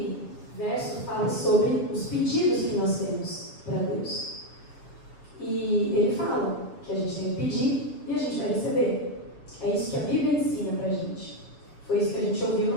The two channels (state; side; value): late; right; 7.1 ms